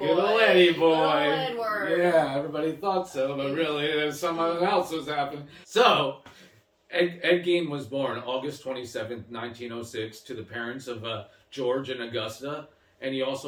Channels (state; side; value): identical; both; correlation 1.00